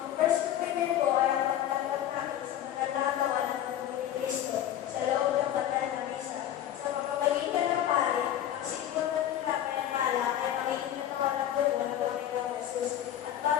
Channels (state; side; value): quieter; right; 11.3 dB